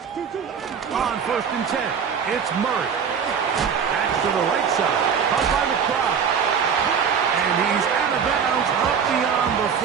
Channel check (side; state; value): left; quieter; 6.9 dB